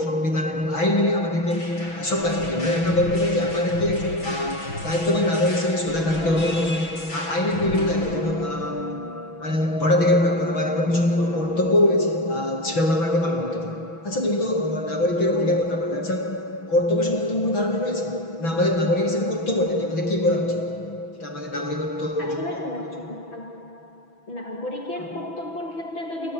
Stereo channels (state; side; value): late; right; 6.1 ms